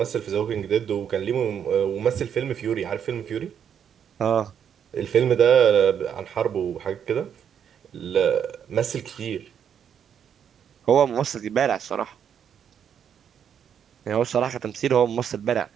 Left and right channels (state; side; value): quieter; left; 8.4 dB